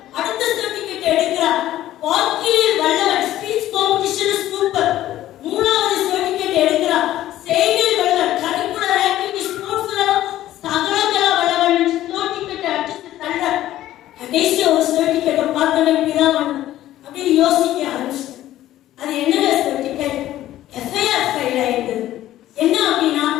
அடுத்த ஸ்டோன் டிக்கெட் எடுக்கிறார். வாக்கிலில் வல்லவன், ஸ்பீச் காம்படிஷன் சூப்பர். 3வது ஸ்டோன் டிக்கெட் எடுக்கிறார். செய்தியில் வல்லவன், கரிக்குலர் ஆக்டிவிட்டி ஸ்போர்ட்ஸ்ல சகலகலா வல்லவன் ஸ்டோன் டிக்கெட் அடிச்சு தள்ள. கடைசி ஒரு ஸ்டோன் டிக்கெட்டை பார்த்தவன் பிதாவானவர் அப்படியே யோசிக்க ஆரம்பிச்சு, அது என்ன சர்டிபிகேட்? எஃப்ஐஆர் ஃபைல் ஆயிடுது. என்ன அப்படின்னா,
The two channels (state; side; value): quieter; right; 13.8 dB